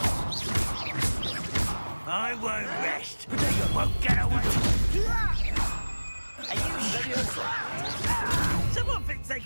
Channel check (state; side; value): inverted; both; correlation -1.00